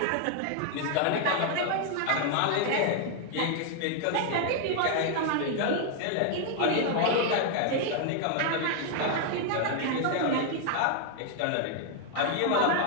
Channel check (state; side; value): different; both; correlation 0.00